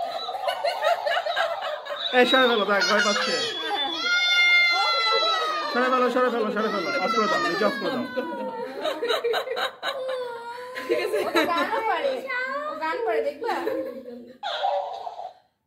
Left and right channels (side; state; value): both; identical; correlation 1.00